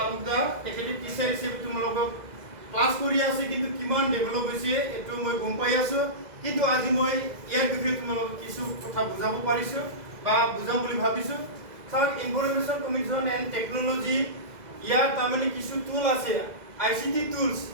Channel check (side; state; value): left; late; 2.0 ms